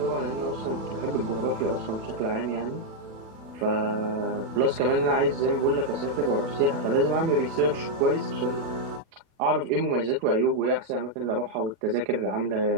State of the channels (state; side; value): late; left; 36 ms